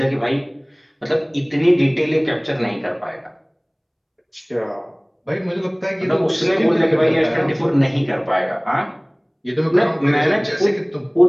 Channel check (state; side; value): identical; both; correlation 1.00